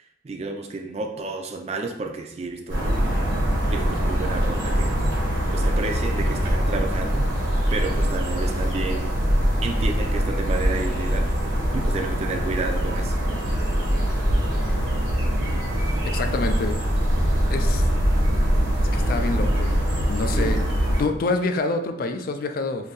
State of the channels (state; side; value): normal; both; correlation 0.80